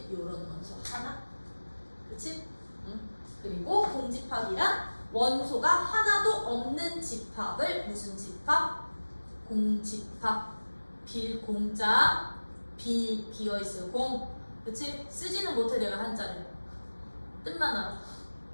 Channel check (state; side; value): inverted; both; correlation -1.00